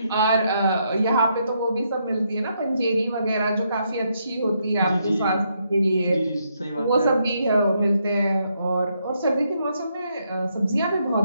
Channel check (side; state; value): both; inverted; correlation -0.77